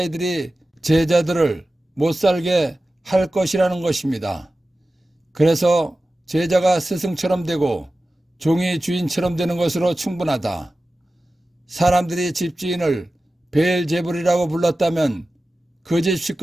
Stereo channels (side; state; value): both; normal; correlation 0.95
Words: 제자들을 못살게 할 것이라는 것입니다. 그래서 제자가 스승처럼 되고 종이 주인처럼 되는 것으로 충분하다. 사람들이 집주인을 베엘제불이라고 불렀다면 그 집